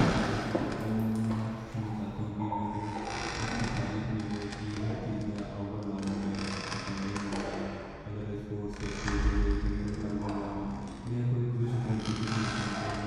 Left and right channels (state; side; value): identical; both; correlation 1.00